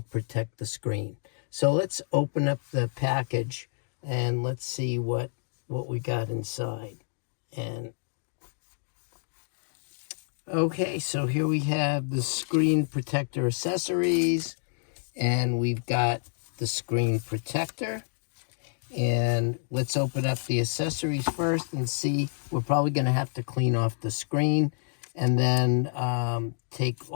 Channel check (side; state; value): right; silent; digital silence